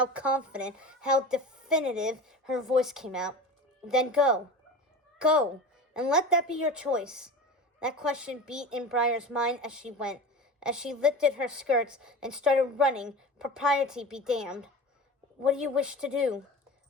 confident, how definitive her voice came out. "Then go. Go, and let that be your choice." That question beat in Briar's mind as she went, as she lifted her skirts and started running, propriety be damned. "What do you wish to do?"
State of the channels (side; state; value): both; normal; correlation 0.32